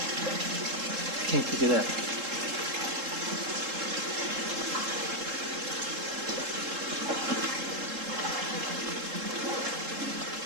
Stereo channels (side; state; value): left; late; 3.7 ms